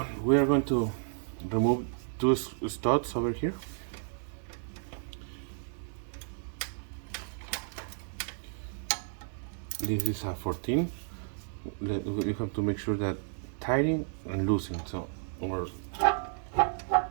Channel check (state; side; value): silent; left; digital silence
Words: we are going to remove two studs over here. This is a 14. We have to make sure that tightening and loosening, so or